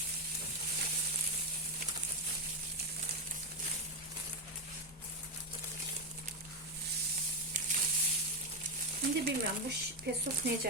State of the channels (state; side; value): normal; both; correlation 0.08